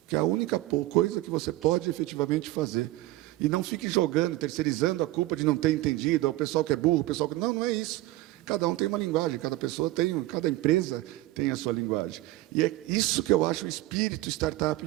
Que é a única coisa que você pode efetivamente fazer. E não fique jogando, terceirizando a culpa de não ter entendido, ao pessoal que é burro, o pessoal que... Não é isso. Cada um tem uma linguagem, cada empresa tem a sua linguagem. E é isso que eu acho o espírito startup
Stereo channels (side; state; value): left; quieter; 17.4 dB